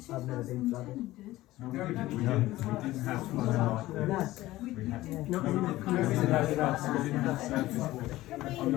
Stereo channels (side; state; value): right; quieter; 16.8 dB